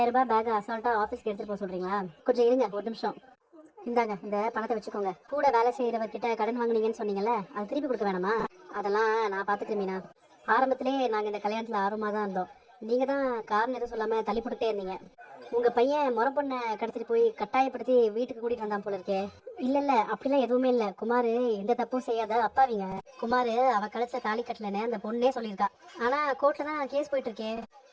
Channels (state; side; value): identical; both; correlation 1.00